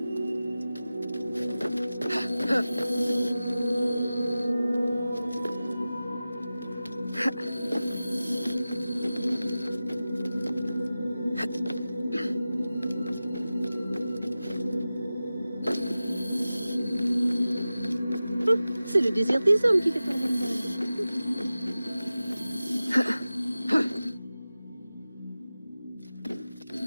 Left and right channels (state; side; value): inverted; both; correlation -0.95